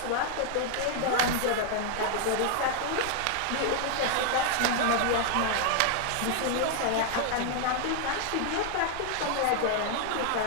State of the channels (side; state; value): both; different; correlation 0.00